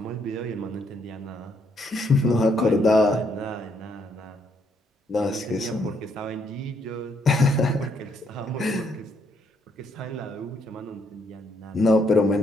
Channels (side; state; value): both; normal; correlation 0.72